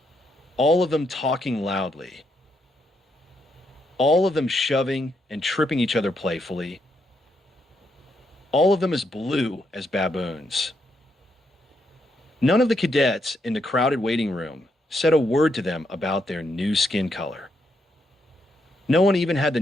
All of them talking loudly. All of them shoving and tripping each other playfully. All of them as blue as baboons. None of the cadets in the crowded waiting room said a word to them about their new skin color. No one even had the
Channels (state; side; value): normal; both; correlation 0.78